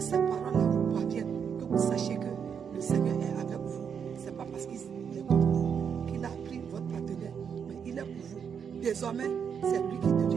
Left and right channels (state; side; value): quieter; left; 7.2 dB